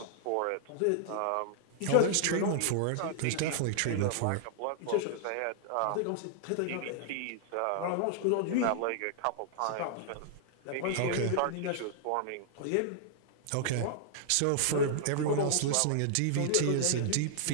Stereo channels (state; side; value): different; both; correlation -0.01